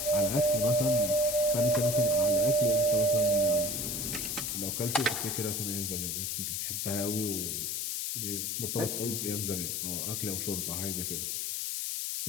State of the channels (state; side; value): noise; left; hiss, 2 dB below the sound